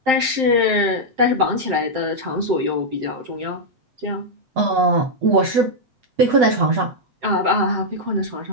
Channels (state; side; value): late; left; 7.6 ms